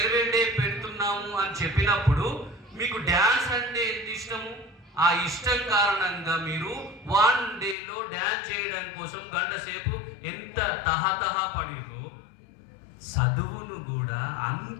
డే పెడుతున్నాము అని చెప్పినప్పుడు మీకు డ్యాన్స్ అంటే ఎంత ఇష్టము, ఆ ఇష్టం కారణంగా మీరు 1 డేలో డ్యాన్స్ చేయడం కోసం 1 గంట సేపు ఎంత తహతహ పడిరో, చదువును కూడా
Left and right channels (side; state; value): right; drops out; at 7.8 s